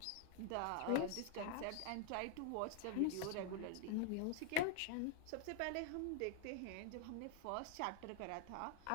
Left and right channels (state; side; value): different; both; correlation 0.00